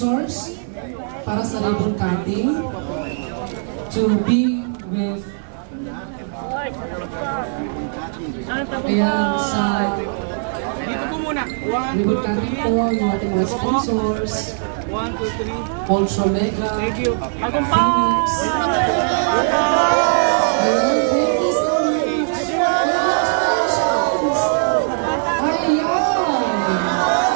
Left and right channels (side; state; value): left; silent; digital silence